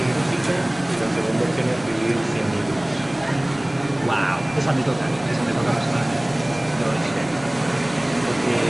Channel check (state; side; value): noise; left; rumble, 20 dB below the sound